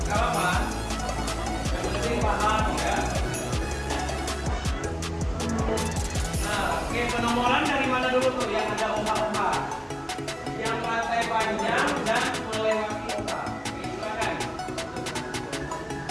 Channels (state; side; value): identical; both; correlation 1.00